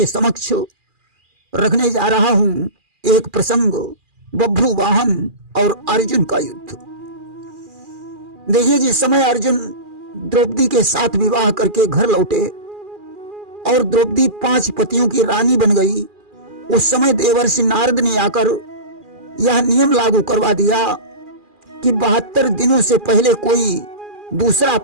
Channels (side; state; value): left; late; 2.4 ms